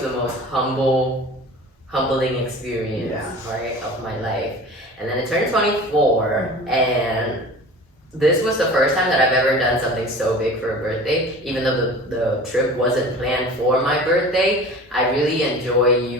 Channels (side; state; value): both; normal; correlation 0.40